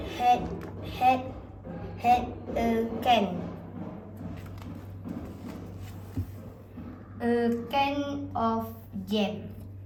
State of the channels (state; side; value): identical; both; correlation 1.00